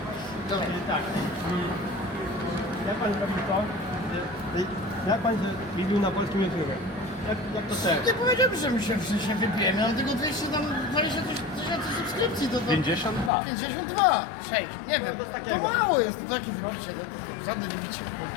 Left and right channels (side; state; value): right; drops out; at 13.3 s